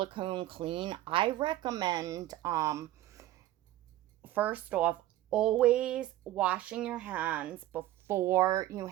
clean. I recommend, first off, always washing your hands before you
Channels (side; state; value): left; quieter; 14.8 dB